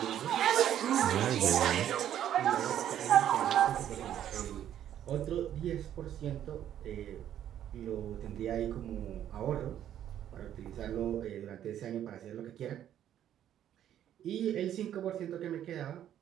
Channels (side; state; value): left; quieter; 10.8 dB